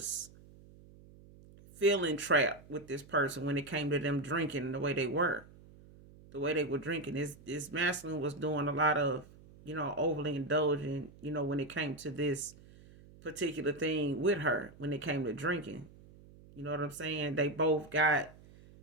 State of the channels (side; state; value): right; noise; hum, 22 dB below the sound